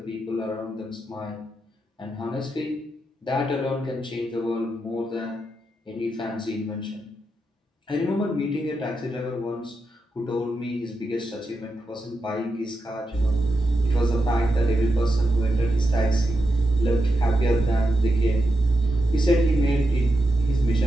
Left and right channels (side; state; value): both; normal; correlation 0.87